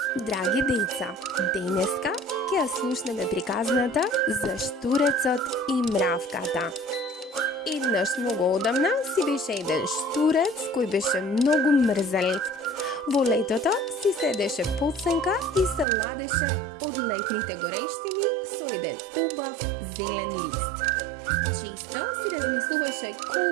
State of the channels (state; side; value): drops out; left; at 15.9 s